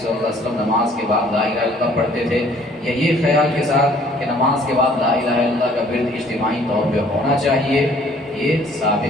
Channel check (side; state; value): both; normal; correlation 0.58